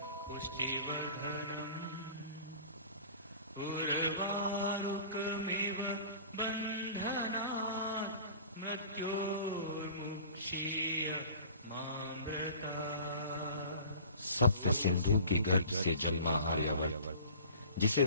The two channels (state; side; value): inverted; both; correlation -0.44